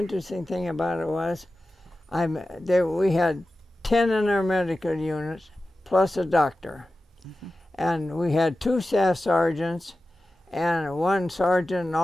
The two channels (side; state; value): both; normal; correlation 0.94